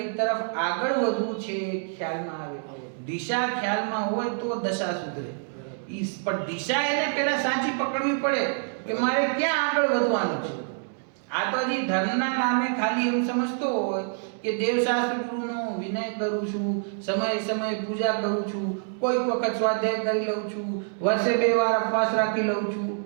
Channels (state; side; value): silent; left; 61 dB below the other